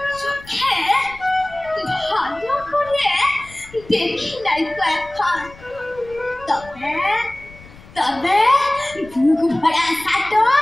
চোখে ভালো করে দেখি নাই তো এখন। তবে তবে বুক ভরা সাটো,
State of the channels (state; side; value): noise; left; rumble, 21 dB below the sound